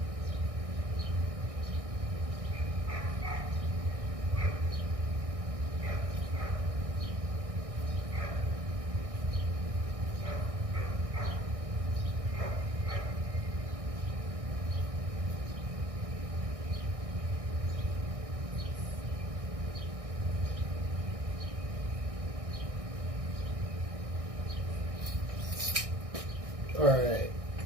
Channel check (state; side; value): late; left; 1.6 ms